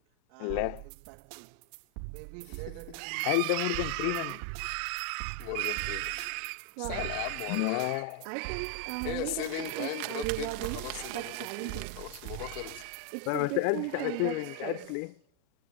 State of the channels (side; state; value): both; different; correlation 0.00